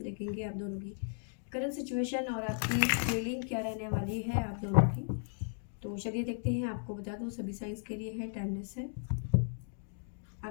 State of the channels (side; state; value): right; silent; digital silence